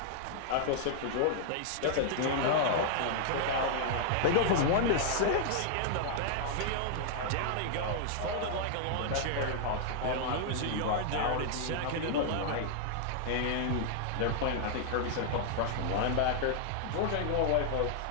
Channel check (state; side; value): different; both; correlation -0.01